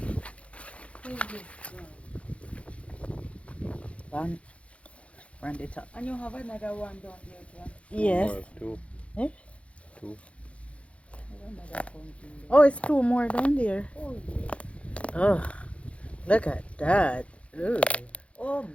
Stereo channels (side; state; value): right; late; 0.062 ms